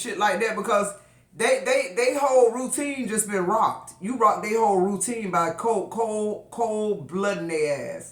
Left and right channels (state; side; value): identical; both; correlation 1.00